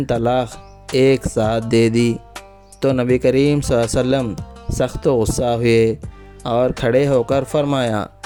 طلاق ایک ساتھ دے دی، تو نبی کریم صلی اللہ علیہ وسلم سخت غصہ ہوئے اور کھڑے ہو کر فرمایا،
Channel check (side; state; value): both; identical; correlation 1.00